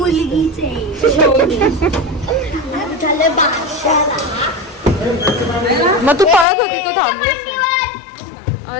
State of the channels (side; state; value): right; drops out; at 6.5 s